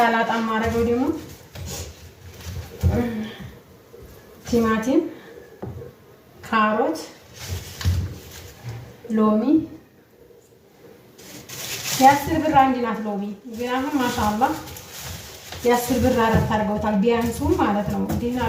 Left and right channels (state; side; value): identical; both; correlation 1.00